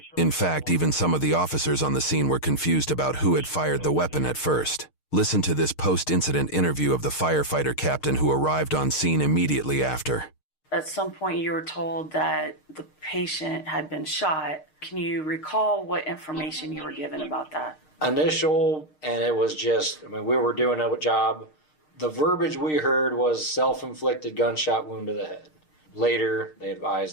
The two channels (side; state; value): right; late; 6.5 ms